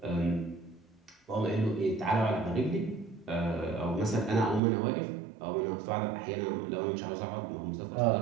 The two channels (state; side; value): drops out; left; at 4.6 s